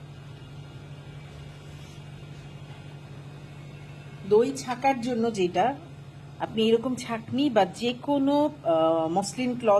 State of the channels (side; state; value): both; identical; correlation 1.00